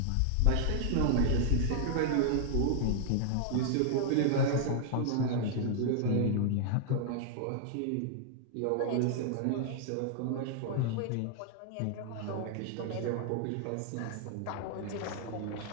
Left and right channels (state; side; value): different; both; correlation -0.01